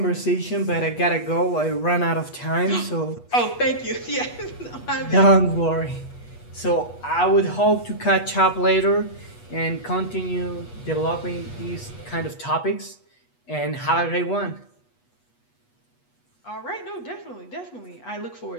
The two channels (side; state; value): right; late; 8.2 ms